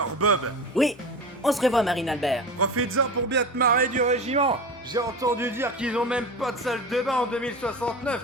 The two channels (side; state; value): both; normal; correlation 0.29